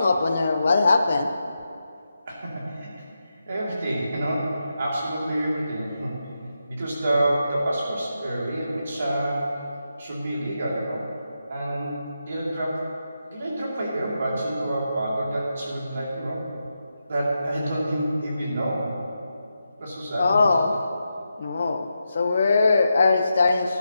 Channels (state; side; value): inverted; both; correlation -0.87